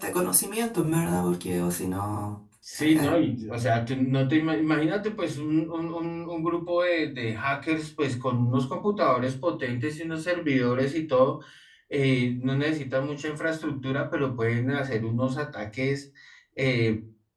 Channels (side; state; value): both; identical; correlation 1.00